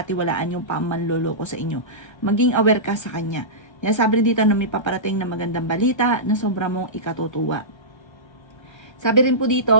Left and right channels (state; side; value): late; right; 1.3 ms